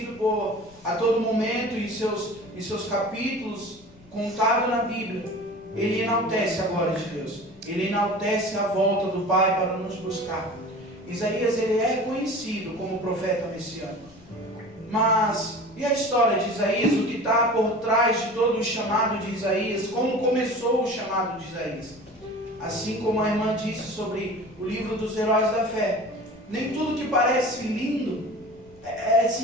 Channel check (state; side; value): noise; left; rumble, 25 dB below the sound